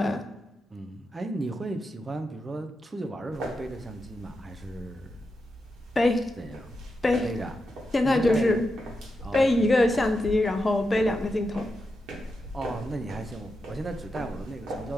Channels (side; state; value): both; normal; correlation 0.87